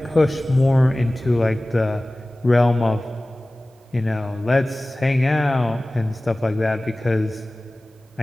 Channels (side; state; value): both; normal; correlation 0.98